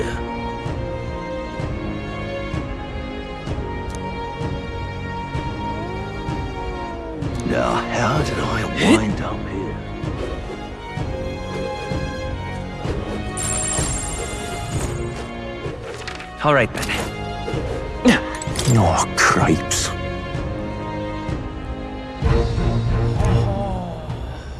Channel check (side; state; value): both; identical; correlation 1.00